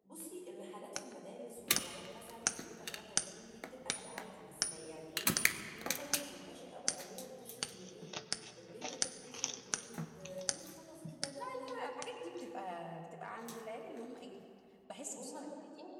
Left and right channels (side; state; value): both; identical; correlation 1.00